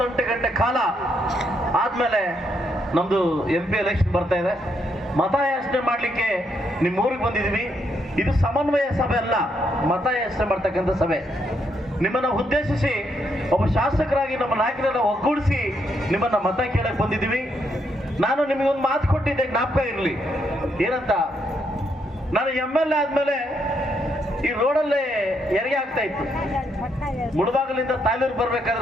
ಗಂಟೆ ಕಾಲ ಆದ್ಮೇಲೆ ನಮ್ದು MP ಎಲೆಕ್ಷನ್ ಬರ್ತಾ ಇದೆ. ಮತಯಾಚನೆ ಮಾಡ್ಲಿಕ್ಕೆ ನಿಮ್ಮ ಊರಿಗೆ ಬಂದಿದ್ದೀವಿ. ಇದು ಸಮನ್ವಯ ಸಭೆ ಅಲ್ಲ, ಮತಯಾಚನೆ ಮಾಡ್ತಕ್ಕಂಥ ಸಭೆ. ನಿಮ್ಮನ್ನ ಉದ್ದೇಶಿಸಿ ಒಬ್ಬ ಶಾಸಕರಾಗಿ ನಮ್ಮ ನಾಯಕರನ್ನ ಒಗ್ಗೂಡಿಸಿ ನಿಮ್ಮನ್ನ ಮತ ಕೇಳಕ್ ಬಂದಿದ್ದೀವಿ. ನಾನು ನಿಮಗೊಂದು ಮಾತು ಕೊಟ್ಟಿದ್ದೆ, ಜ್ಞಾಪಕ ಇರಲಿ. ಏನಂತ, ನಾನು MLA ಆದ್ಮೇಲೆ ಈ ರೋಡಲ್ಲೇ ಹೆರಿಗೆ ಆಗ್ತಾ ಇತ್ತು. ಮುಳಬಾಗಲಿಂದ ತಾಲೂರು ಬರ್ಬೇಕಾದ್ರೆ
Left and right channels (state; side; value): normal; both; correlation 0.76